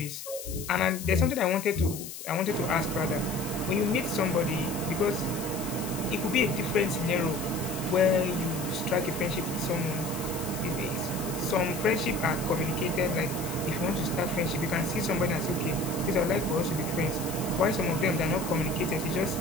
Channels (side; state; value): left; noise; hiss, 10 dB below the sound